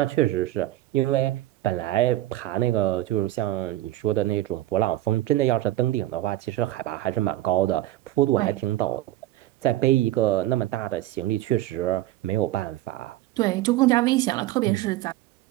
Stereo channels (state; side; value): quieter; left; 15.2 dB